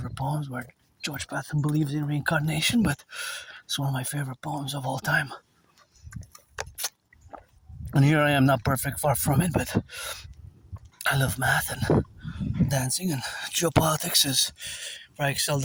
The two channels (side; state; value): both; identical; correlation 1.00